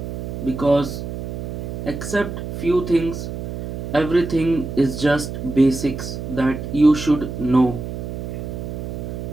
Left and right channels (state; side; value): noise; right; hum, 6 dB below the sound